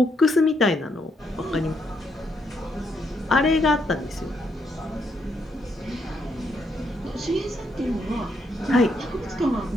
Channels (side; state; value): both; normal; correlation 0.76